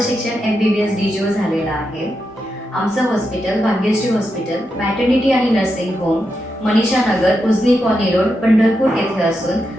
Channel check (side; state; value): both; normal; correlation 0.86